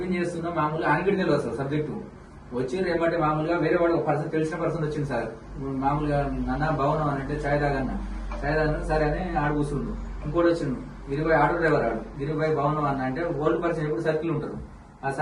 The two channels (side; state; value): both; identical; correlation 1.00